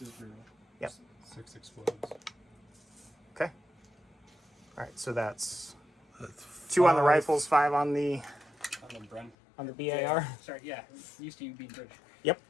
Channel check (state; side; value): drops out; right; at 9.3 s